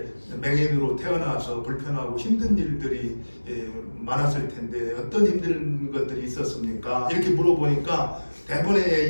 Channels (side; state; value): both; inverted; correlation -1.00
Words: 맹인으로 태어나서 불편하고 힘든 일들이 많았을 텐데 어떤 힘든 것들이 있었습니까? 이렇게 물어보니까